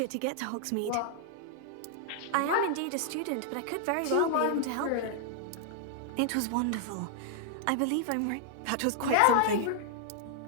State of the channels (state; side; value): different; both; correlation -0.01